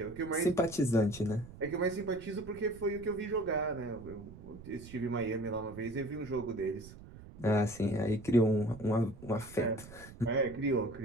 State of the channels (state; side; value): noise; right; rumble, 17 dB below the sound